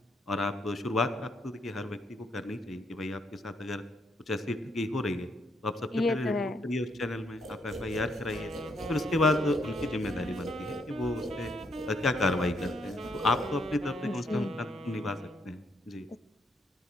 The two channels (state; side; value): normal; both; correlation 0.74